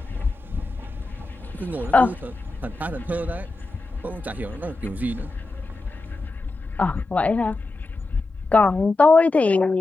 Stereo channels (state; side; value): quieter; right; 3.2 dB